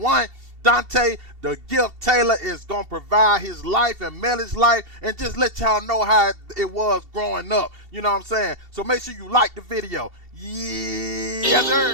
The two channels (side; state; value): left; late; 2.7 ms